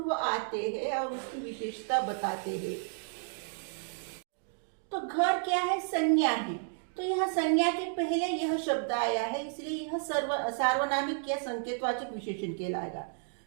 आते हैं और उसकी विशेषता बताते हैं। तो घर क्या है? संज्ञा है। तो यह संज्ञा के पहले यह शब्द आया है, इसलिए यह सार्वनामिक या संकेतवाचक विशेषण कहलाएगा।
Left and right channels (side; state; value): left; silent; digital silence